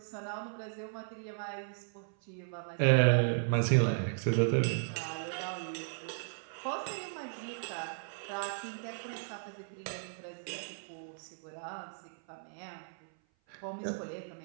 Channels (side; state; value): left; silent; 54 dB below the other